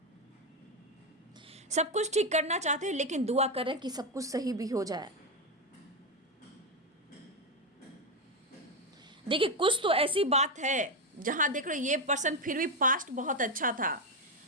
सब कुछ ठीक करना चाहते हैं, लेकिन दुआ कर रहे हैं कि सब कुछ सही भी हो जाए। देखिए कुछ तो ऐसी बात है जहां देख रहे ये पर्सन फिर भी पास्ट बहुत अच्छा था,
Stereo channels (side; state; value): both; normal; correlation 0.08